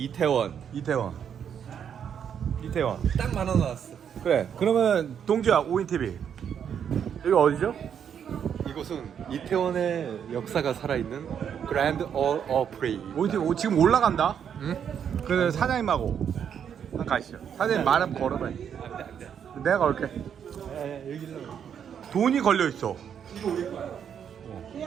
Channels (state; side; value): quieter; left; 8.2 dB